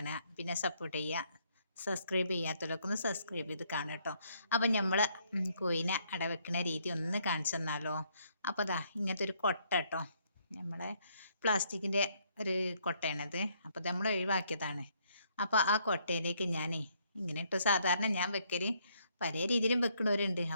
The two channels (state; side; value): inverted; both; correlation -0.69